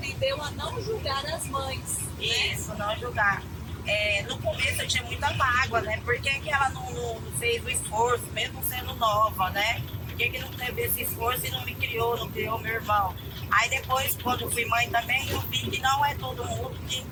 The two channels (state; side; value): identical; both; correlation 1.00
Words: a não julgar as mães. Isso, né? Não julgar. No começo eu tinha muita mágoa, né? Por que ela não fez o esforço, mesmo sendo nova, né? Por que não teve esse esforço e não me criou, não criou meu irmão? Aí depois, quando fui mãe também, eu vi que não é todo mundo